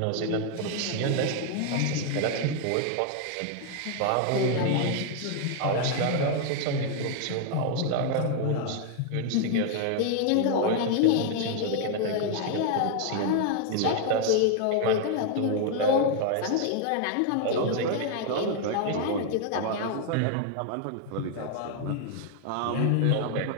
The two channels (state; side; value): different; both; correlation 0.00